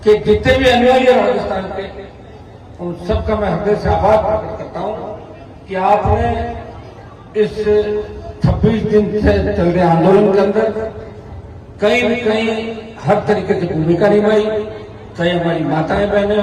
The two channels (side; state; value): both; identical; correlation 1.00